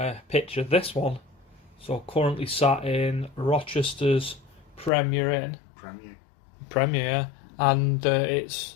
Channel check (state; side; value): drops out; right; at 4.9 s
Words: picture this one. So currently sat in Rochester's Premier Inn. Premier, yeah. And it's,